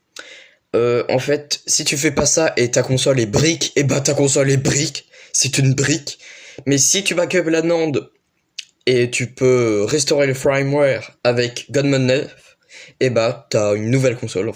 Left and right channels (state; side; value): identical; both; correlation 1.00